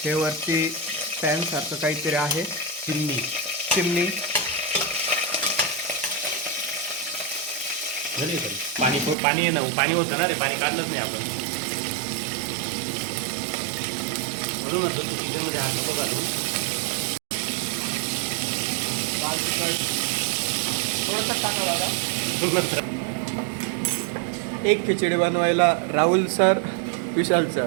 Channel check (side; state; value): left; drops out; at 9.2 s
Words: हे वरती पॅन सारखं काहीतरी आहे. चिमणी. चिमणी. झाली तरी पाणी आहे ना, पाणी होतं ना रे, पाणी काढलंच नाही आपण. म्हणून किचनमध्ये हात नको घालू. लाल तिखट थोडंसं टाका बघा. एक खिचडी बनवायला राहुल सर, विशाल